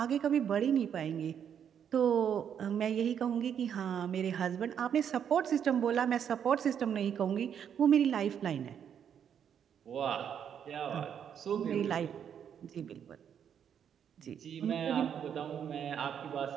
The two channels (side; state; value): left; quieter; 8.4 dB